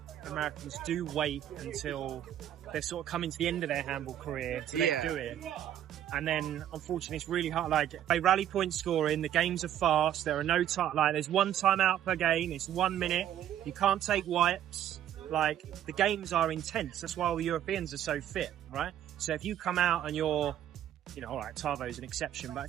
Americans do wait until they're sort of coming to the end of their handball career to then do it. And then, unfortunately, it's really hard. Like, they rally point scoring, the games are fast, there are no time, like, there's 1 timeout per game, it's 1 minute, you can't take wipes. Like, the games are intense. That's why all the Europeans are so fit, right? So if you come out and you're, you know, alright, Tavo's an exception, but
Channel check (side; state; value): left; quieter; 11.0 dB